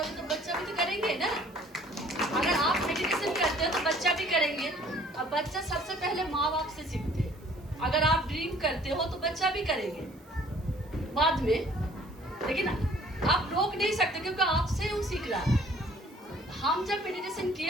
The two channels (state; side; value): noise; right; hiss, 30 dB below the sound